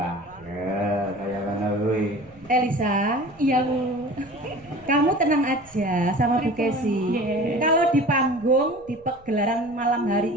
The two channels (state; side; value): noise; right; rumble, 27 dB below the sound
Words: Ya, kayak mana kuwi. Elisa, Iya, Bu. kamu tenang aja sama Bu Kesi. Yeah. Kalau di panggung di pegelaran malam